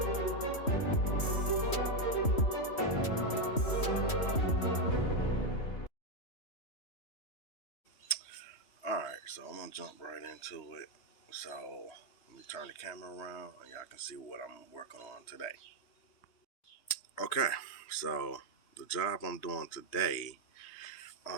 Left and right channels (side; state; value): right; late; 3.1 ms